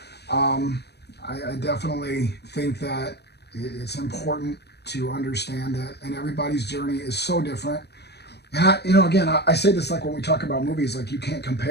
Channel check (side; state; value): right; late; 0.48 ms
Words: I definitely think that it's important to understand that, and everybody's journey is so different. And I say this like when we talk about movies, like you can't